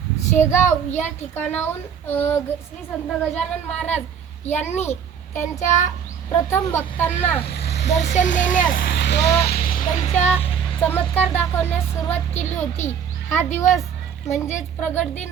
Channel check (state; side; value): quieter; left; 7.8 dB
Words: शेगाव या ठिकाणाहून श्री संत गजानन महाराज यांनी त्यांच्या प्रथम भक्तांना दर्शन देण्यास व त्यांच्या चमत्कार दाखवण्यास सुरुवात केली होती। हा दिवस म्हणजेच प्रगट दिन